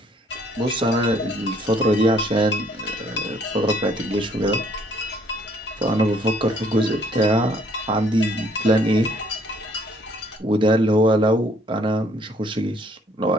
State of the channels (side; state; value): both; normal; correlation 0.63